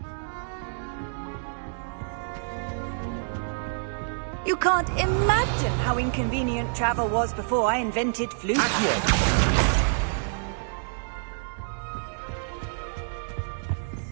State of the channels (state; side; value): silent; left; digital silence